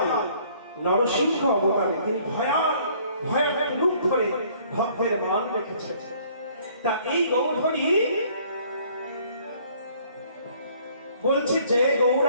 নরসিংহ অবতারে তিনি ভয়াল ভয়াল রূপ ধরে ভক্তের মান রেখেছেন। তা এই গৌর হরি বলছে, যে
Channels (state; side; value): inverted; both; correlation -0.59